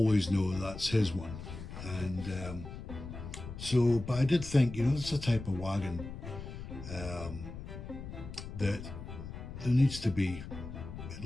know that's his one. And but I did think, you know, it's a type of wagon that there needs to be at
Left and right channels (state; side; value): noise; left; rumble, 10 dB below the sound